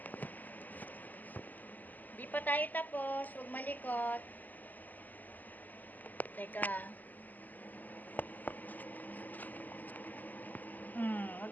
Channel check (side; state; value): right; late; 0.083 ms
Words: Di pa tayo tapos. Huwag malikot. Teka. Huwag